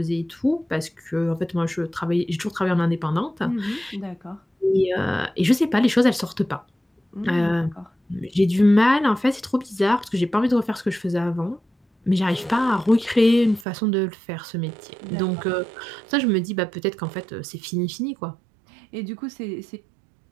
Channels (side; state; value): left; drops out; at 13.7 s